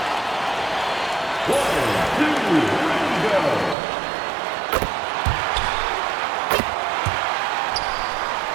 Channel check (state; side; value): drops out; left; at 3.8 s